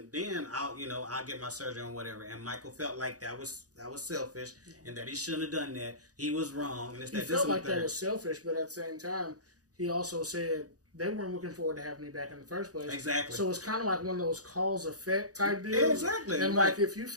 then I'll get my surgery and whatever." And Michael felt like that was selfish, and that he shouldn't have done that. He was wrong, and he felt like that was selfish, but at the same time, he also said they weren't looking forward to having me back in the first place. Exactly. So it's kind of like one of those cause effect type deals. Exactly. And like if you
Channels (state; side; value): late; left; 0.67 ms